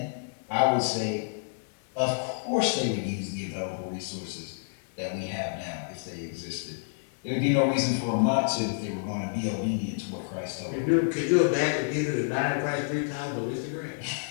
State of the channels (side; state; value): right; silent; 59 dB below the other